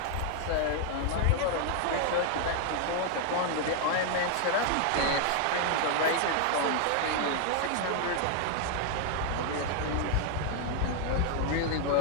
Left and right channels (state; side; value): different; both; correlation 0.00